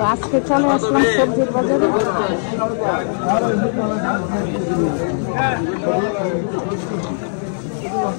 আজকে চলে আসলাম সবজির বাজারে।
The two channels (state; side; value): silent; right; 66 dB below the other